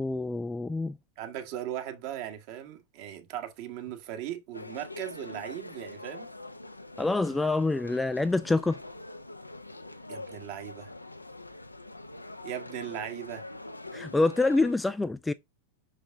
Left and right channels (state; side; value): normal; both; correlation 0.80